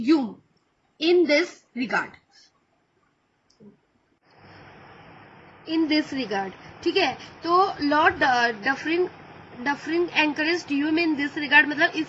Hume in this regard. ठीक है, तो Lord Dufferin encouraged Hume in this regard मतलब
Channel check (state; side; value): identical; both; correlation 1.00